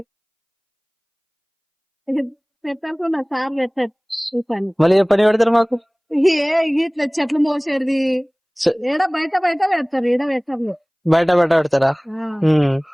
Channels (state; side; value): identical; both; correlation 1.00